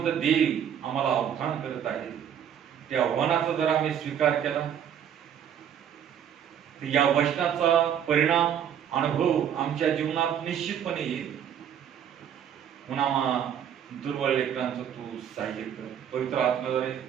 देव आम्हाला आव्हान करत आहे. त्या आव्हानाचा जर आम्ही स्वीकार केला तर या वचनाचा परिणाम, अनुभव आमच्या जीवनात निश्चितपणे येईल. म्हणून दुर्बळ लेकरांचं तू सहाय्य कर. पवित्र आत्म्याद्वारे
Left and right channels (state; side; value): quieter; left; 9.1 dB